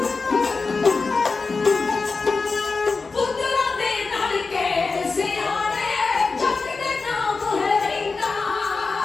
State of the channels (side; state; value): right; quieter; 4.3 dB